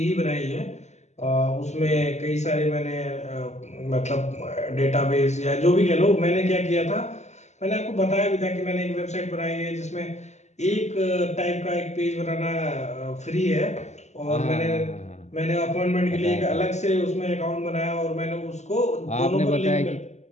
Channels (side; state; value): right; late; 0.33 ms